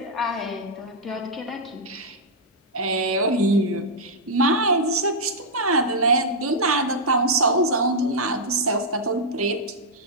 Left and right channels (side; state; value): both; normal; correlation -0.07